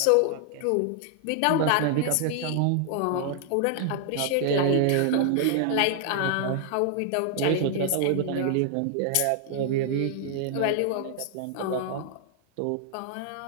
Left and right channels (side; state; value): both; different; correlation 0.00